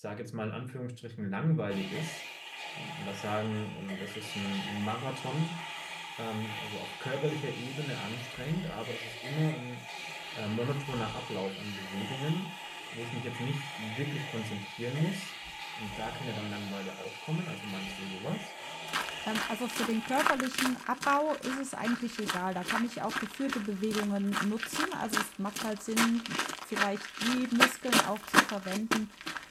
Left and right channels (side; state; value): both; identical; correlation 1.00